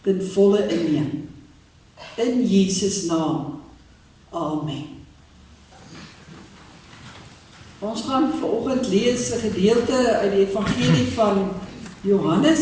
ten volle inneem. In Jesus naam. Amen. Ons gaan vanoggend lees 'n gedeelte uit die evangelie van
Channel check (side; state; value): both; identical; correlation 1.00